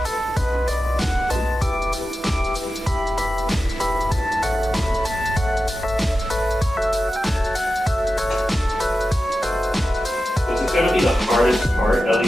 This is going to be the hardest part, at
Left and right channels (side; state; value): both; normal; correlation 0.92